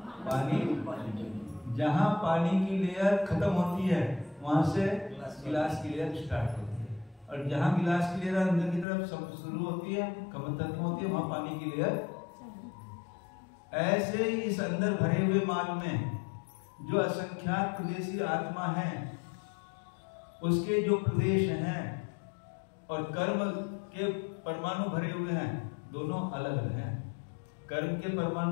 पानी जहां पानी की लेयर खत्म होती है वहां से गिलास की लेयर स्टार्ट होती है, और जहां गिलास की लेयर अंदर की तरफ शुरू होती है, खत्म होती है, वहां पानी की लेयर। ऐसे ही इस अंदर भरे हुए माल में जो असंख्यात प्रदेशी आत्मा है, उसके जो प्रदेश हैं और कर्म के परमाणु भरे हुए हैं, दोनों अलग अलग हैं। कर्म के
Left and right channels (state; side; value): drops out; right; at 8.8 s